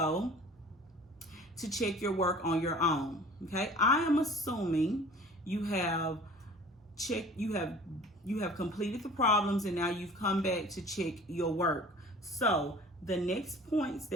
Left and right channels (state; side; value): normal; both; correlation 0.46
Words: to check your work on your own. Okay, I am assuming you have completed the problems, and now you've come back to check your work. So the next points